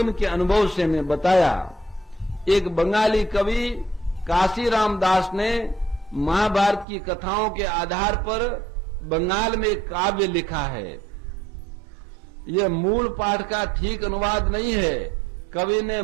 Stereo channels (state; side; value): drops out; left; at 6.9 s